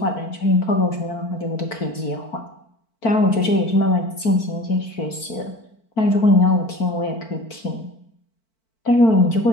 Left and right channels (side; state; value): right; late; 4.5 ms